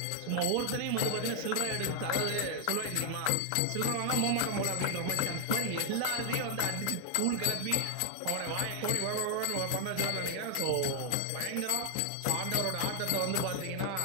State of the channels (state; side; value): different; both; correlation 0.00